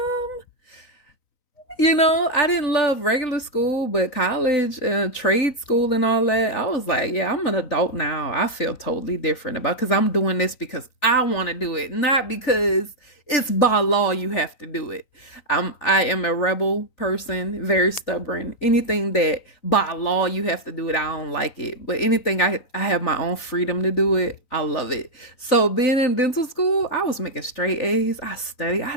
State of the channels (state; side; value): late; right; 3.9 ms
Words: I didn't love regular school, but college, trade school, and all that, I was like, yeah, I'm an adult now. I feel totally different about because I'm doing this because I want to do it, not because it's by law you have to do it. I am a rebel person, very stubborn. Anything that by law you have to do it, I don't like it. But anything I have my own freedom to do it, I love it. So being in dental school, I was making straight A's. I studied, I